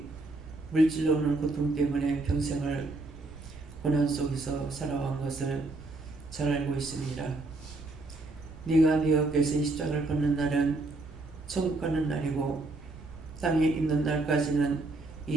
물질로 오는 고통 때문에 평생을 고난 속에서 살아온 것을 잘 알고 있습니다. 네가 네 어깨에서 이 십자가를 걷는 날은 천국 가는 날이고 땅에 있는 날까지는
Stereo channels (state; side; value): quieter; left; 3.1 dB